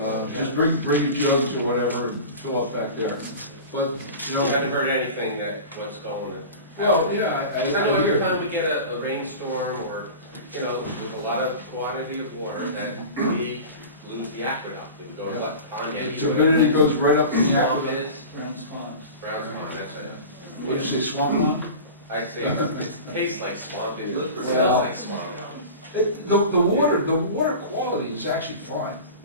just jugs. bring your jugs or whatever, and fill up back there. But, you You haven't know, heard anything that, what's going on? well, yeah, I I know every hear. time we get a rainstorm or, you know, there's a lot of quantity of water that we lose the aqueduct. It would go to what, Pond The Eddy? turbidity goes right up in the Swamp it aqueduct. is? Brown's Pond. Browns Pond, that's it. What'd you say, swamp one? I say, it tastes like swamp, it Well- smells like swamp. The water quality is actually fine.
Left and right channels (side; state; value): both; inverted; correlation -0.34